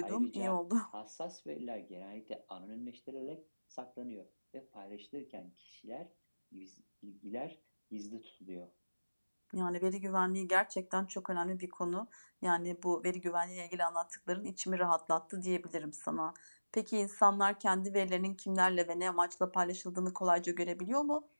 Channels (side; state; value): both; inverted; correlation -1.00